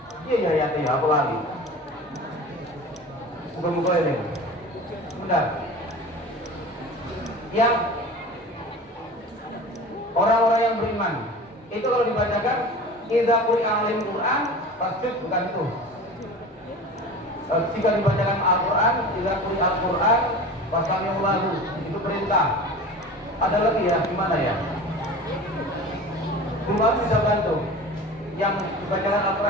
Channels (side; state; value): both; normal; correlation 0.36